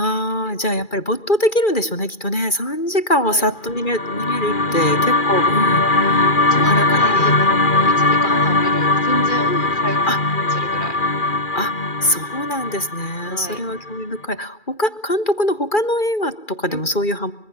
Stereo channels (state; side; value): late; right; 2.4 ms